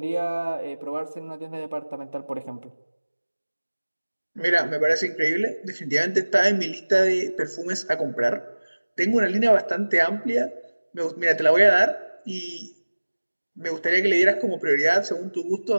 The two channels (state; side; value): inverted; both; correlation -1.00